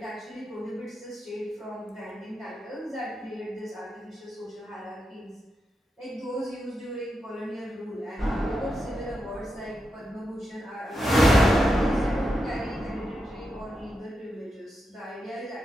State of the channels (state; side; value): normal; both; correlation 0.86